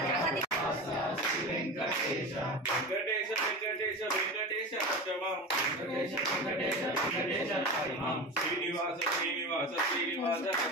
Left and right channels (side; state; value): both; normal; correlation 0.28